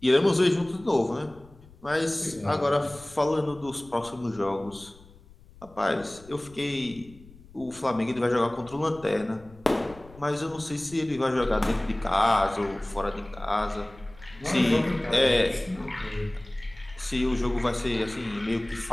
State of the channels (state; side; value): noise; left; rumble, 22 dB below the sound